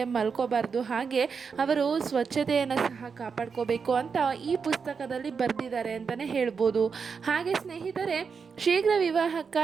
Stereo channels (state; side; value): quieter; left; 5.7 dB